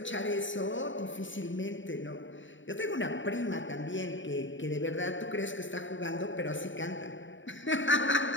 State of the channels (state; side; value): late; right; 0.55 ms